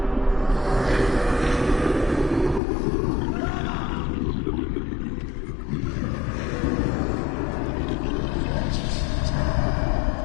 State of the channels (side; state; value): right; drops out; at 2.6 s